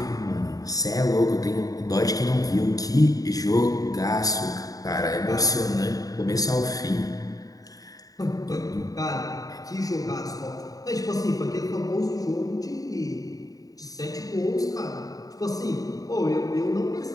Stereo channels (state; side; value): late; right; 0.18 ms